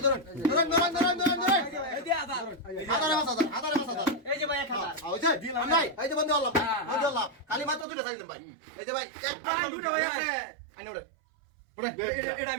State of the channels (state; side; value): drops out; left; at 7.9 s